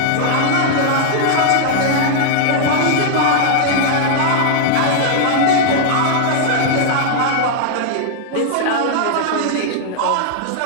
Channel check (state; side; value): different; both; correlation -0.01